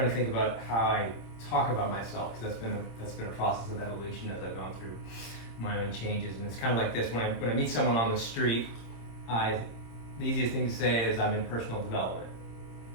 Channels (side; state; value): right; late; 26 ms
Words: to think about how I talk about myself, because that's been a process of evolution as I've gone through my own changes, and it's kind of like this. When I meet someone on the street, the easiest thing to say is I'm in personal development,